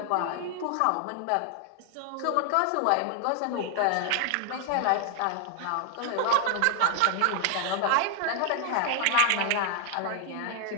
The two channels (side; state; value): both; different; correlation 0.00